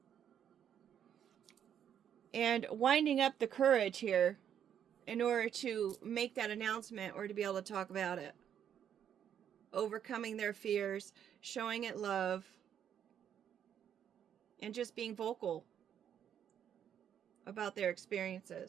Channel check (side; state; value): left; quieter; 9.2 dB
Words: And winding up the courage here in order to make that announcement or to be able to talk about it. Overcoming their fears, showing it love, and just being vocal about their